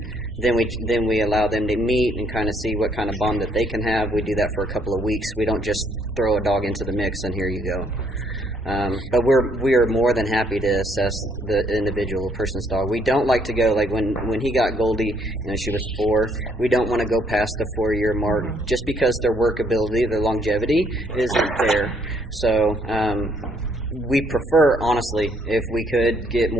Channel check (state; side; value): normal; both; correlation 0.68